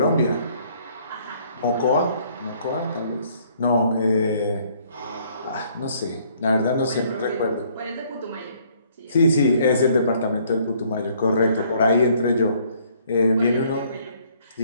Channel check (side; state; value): both; inverted; correlation -0.63